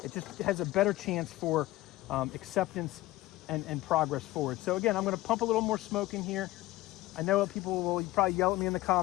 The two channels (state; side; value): quieter; right; 17.6 dB